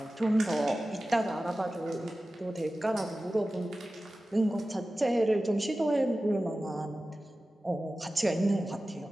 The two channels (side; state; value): both; normal; correlation 0.95